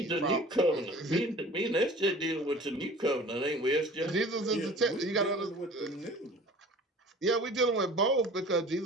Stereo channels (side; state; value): both; normal; correlation 0.44